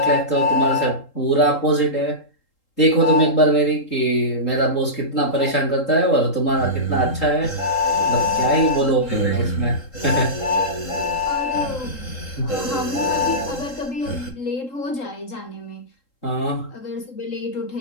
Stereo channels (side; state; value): right; late; 3.8 ms